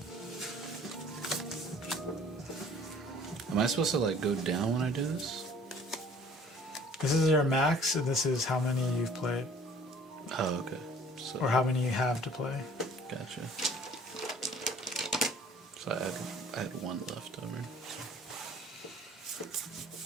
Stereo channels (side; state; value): both; normal; correlation 0.52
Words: Am I supposed to like go down when I do this? This is your max, and this is how many you've played. Oh, okay. So, Or how many you have to play. gotcha. So I had one left over.